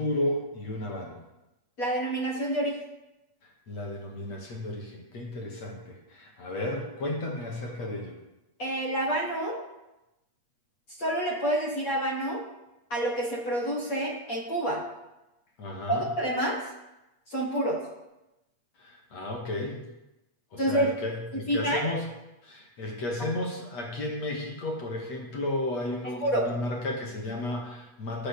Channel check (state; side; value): late; right; 8.4 ms